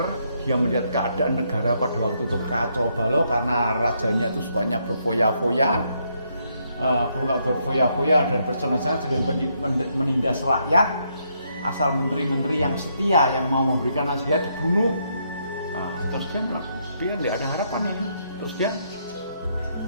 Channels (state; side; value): inverted; both; correlation -0.75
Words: dia melihat keadaan negara pada waktu itu kacau balau karena rajanya itu sukanya berfoya-foya, dan bersenang-senang sedang menindas rakyat. Asal menteri-menteri yang setia yang mau memberikan nasihat dibunuh. Nah, terus dia tidak ada harapan ini. Terus dia